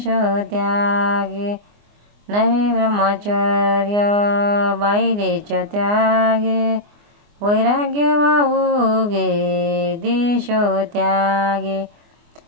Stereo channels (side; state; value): left; late; 24 ms